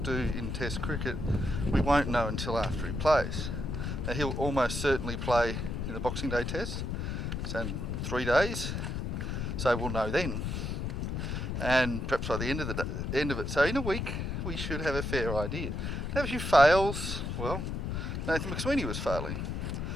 in Test cricket, we won't know until after he plays. Now he'll almost certainly play in the Boxing Day Test. It's in 3 days, so we'll know then. And perhaps by the end of it. So in a week, we should have a fair idea. Now if he fails, well, Nathan McSweeney was failing.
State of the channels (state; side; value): noise; left; rumble, 2 dB below the sound